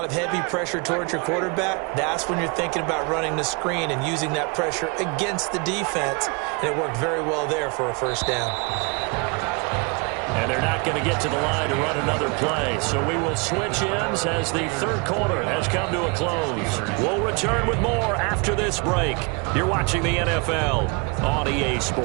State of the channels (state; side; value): quieter; left; 31.0 dB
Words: of heavy pressure towards your quarterback, that's when you're thinking about running the screen and using that pressure against the defense. And it worked very well there for a first down. And they're not going to get to the line to run another play. So we will switch ends as the third quarter has come to a close. We'll return with more after this break. You're watching the NFL on EA